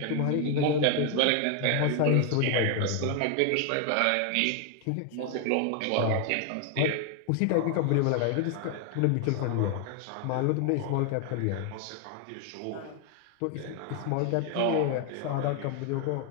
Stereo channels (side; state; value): both; different; correlation 0.01